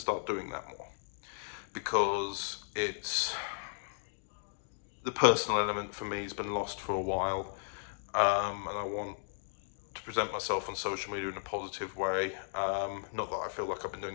doing that more, because the personal element for me has been lost for a while, and I want to present myself on social media in a positive way. Not that I feel like I've been doing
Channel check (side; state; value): right; silent; digital silence